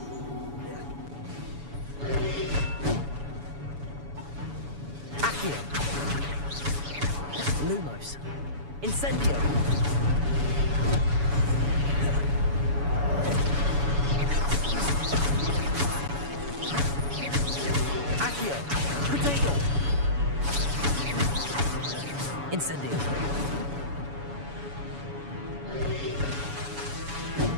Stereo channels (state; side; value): late; left; 7.1 ms